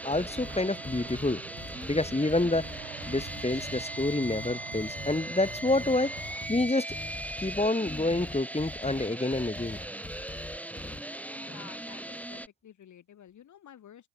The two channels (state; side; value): normal; both; correlation 0.62